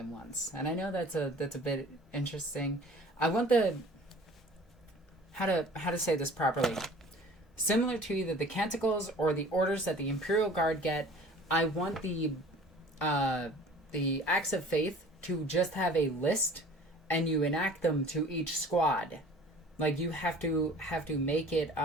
once. And I know that's a bit interesting. I want the... How to say this properly. Similar to either the canticles or the orders that the Imperial Guard get, I want the Acts of Faith to just have a list, and you enact them to each squad. Like, you have to make it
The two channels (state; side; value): normal; both; correlation 0.47